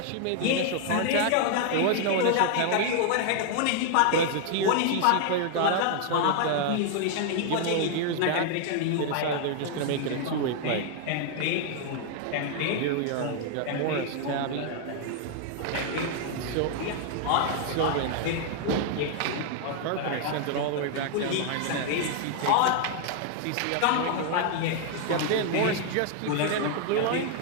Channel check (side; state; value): both; different; correlation 0.00